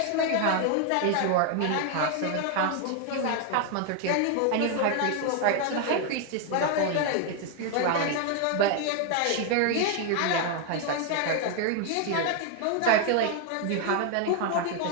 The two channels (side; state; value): both; different; correlation 0.01